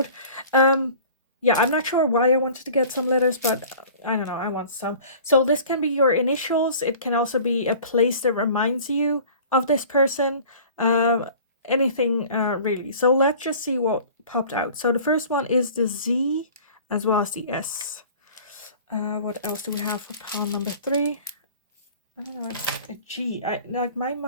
Yeah, I'm not sure why I wanted to get some letters, but I don't know, I want some. So this can be your initials. It can also be a place that reminds you of this person. Anything really. So let's just see what popped out. So the first one is the Z as well as the S. What else do we have for pile number 3? I don't know, it's a G. Like my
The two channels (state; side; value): inverted; both; correlation -0.45